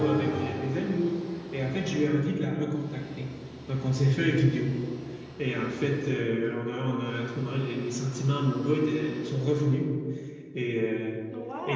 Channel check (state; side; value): identical; both; correlation 1.00